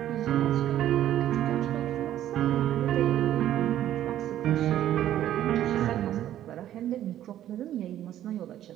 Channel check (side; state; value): left; quieter; 12.1 dB